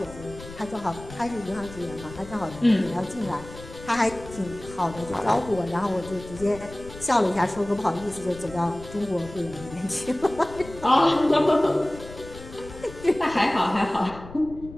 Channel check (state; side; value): noise; left; rumble, 16 dB below the sound